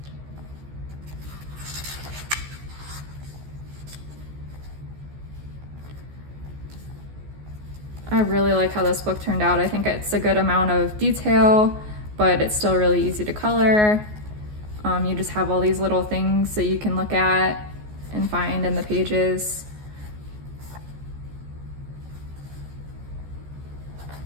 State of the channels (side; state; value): left; late; 14 ms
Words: I really like how this book turned out. I think it's a good amount of detail, but it's still really easy to color. You just have all these little things that you can look at and find in the pages.